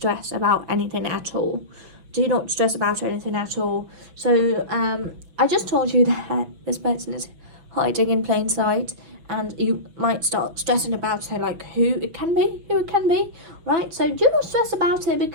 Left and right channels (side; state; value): left; late; 6.1 ms